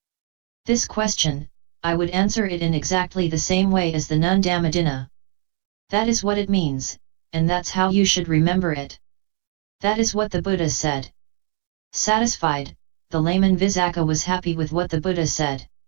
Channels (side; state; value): left; quieter; 27.9 dB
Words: this question, I would answer it in exactly the same way as the nun Dhammadinna. That is what it means, and that's how you should remember it." That is what the Buddha said. Satisfied, the layman Visakha was happy with what the Buddha said.